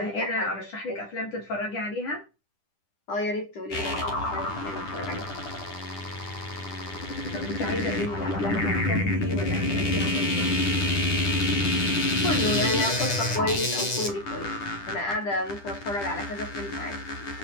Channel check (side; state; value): right; late; 10 ms